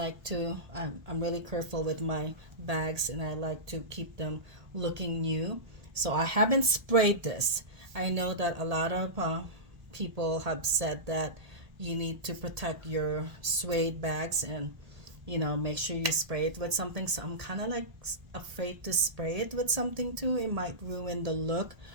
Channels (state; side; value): late; left; 1.7 ms